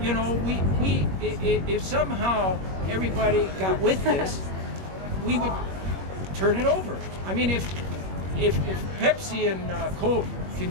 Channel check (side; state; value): left; late; 21 ms